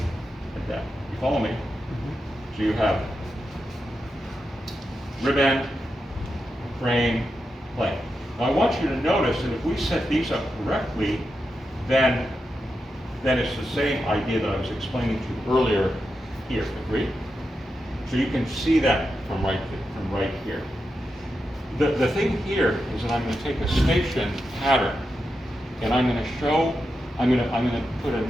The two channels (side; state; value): both; normal; correlation 0.88